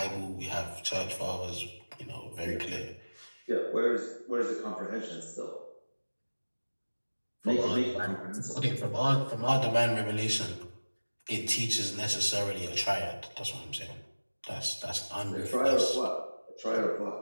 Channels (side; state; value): both; inverted; correlation -1.00